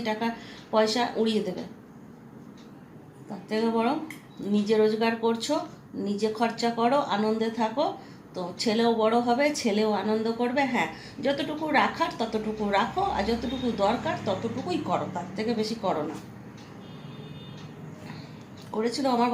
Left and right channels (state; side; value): identical; both; correlation 1.00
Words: টাকা পয়সা উড়িয়ে দেবে। তার থেকে বরং নিজে রোজগার করছো, নিজে খরচা করো, আনন্দে থাকো, তো ছেলেও বড় হবে, ছেলেও আনন্দ করবে। হ্যাঁ, যতটুকু রাখার ততটুকু রাখো, আর যতটুকু দরকার ততটুকুই করো, তার থেকে বেশি করো না। করেছিল, আমার